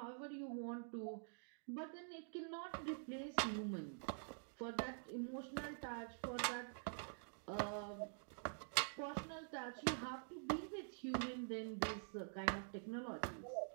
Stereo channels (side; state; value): left; silent; digital silence